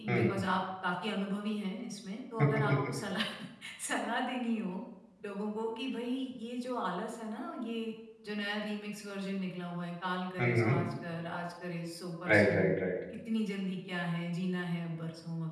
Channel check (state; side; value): identical; both; correlation 1.00